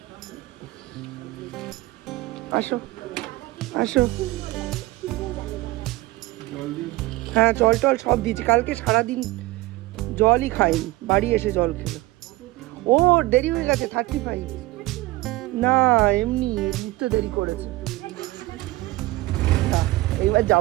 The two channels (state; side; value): quieter; left; 19.1 dB